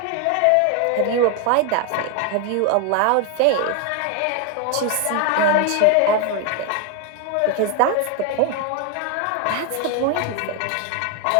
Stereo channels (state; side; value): different; both; correlation 0.01